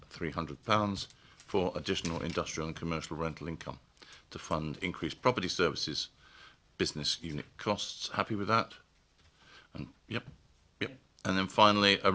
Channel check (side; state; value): both; identical; correlation 1.00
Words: for additional industrial and commercial rental income to fund increased property services business unit costs. Happy with that? And yep. And then finally, a